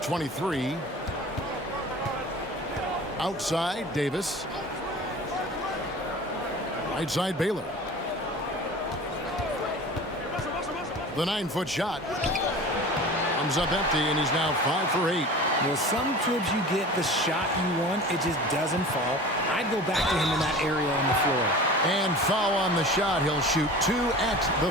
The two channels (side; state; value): both; normal; correlation 0.38